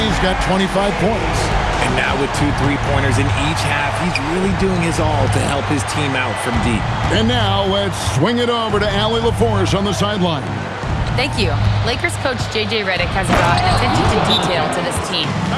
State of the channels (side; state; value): both; identical; correlation 1.00